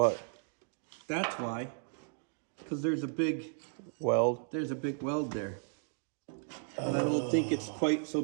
That's why. because there's a big weld. Weld there. And I don't think it's quite so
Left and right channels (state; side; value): silent; left; 55 dB below the other